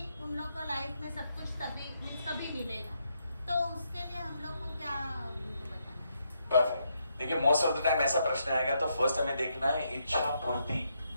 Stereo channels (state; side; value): inverted; both; correlation -0.78